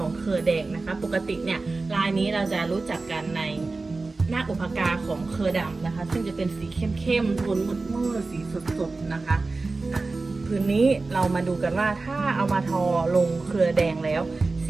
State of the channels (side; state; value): left; quieter; 3.6 dB